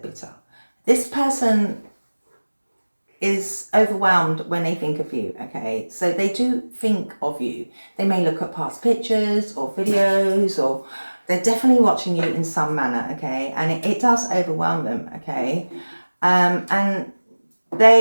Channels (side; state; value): both; inverted; correlation -1.00